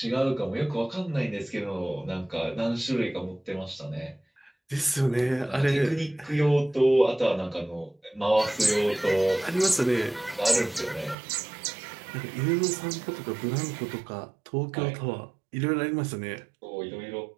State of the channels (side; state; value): left; drops out; at 11.2 s